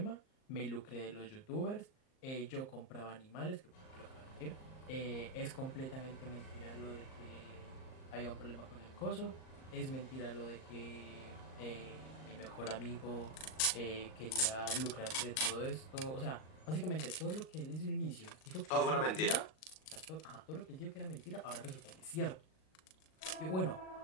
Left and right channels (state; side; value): late; right; 38 ms